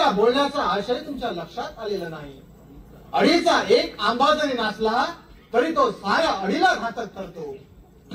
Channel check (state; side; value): identical; both; correlation 1.00